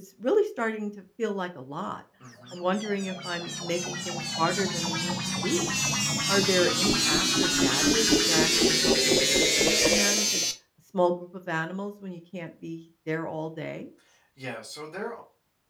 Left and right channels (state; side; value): identical; both; correlation 1.00